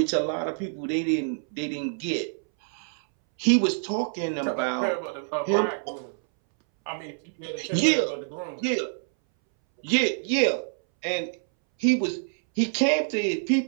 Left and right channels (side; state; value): left; silent; 61 dB below the other